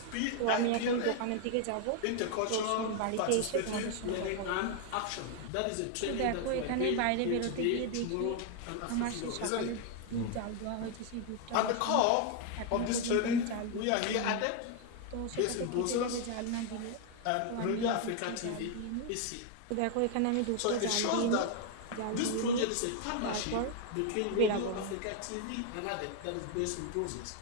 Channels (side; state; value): both; different; correlation 0.00